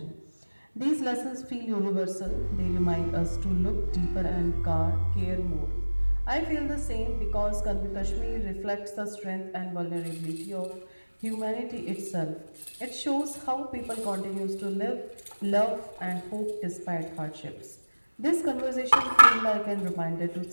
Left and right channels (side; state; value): both; inverted; correlation -1.00